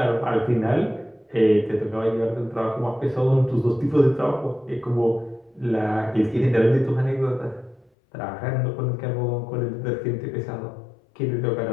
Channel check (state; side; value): drops out; right; at 7.9 s